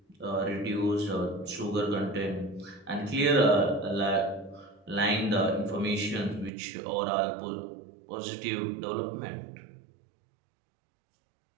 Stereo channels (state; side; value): drops out; left; at 6.5 s